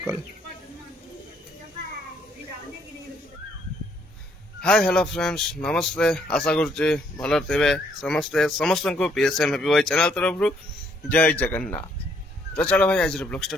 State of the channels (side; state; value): both; normal; correlation 0.68